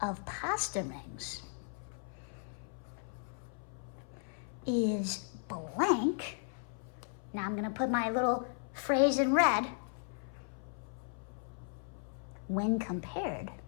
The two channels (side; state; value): right; silent; 53 dB below the other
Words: of pasta rings is blank. Now I'm going to put my little phrase in red. When compared